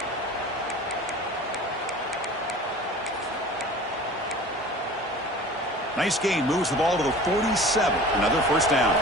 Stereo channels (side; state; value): both; normal; correlation 0.41